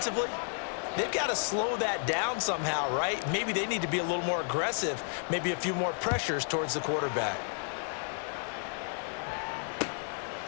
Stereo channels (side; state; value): right; silent; 56 dB below the other